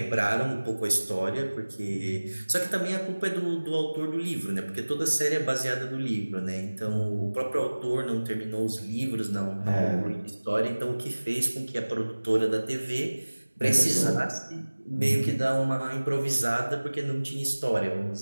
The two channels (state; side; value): inverted; both; correlation -1.00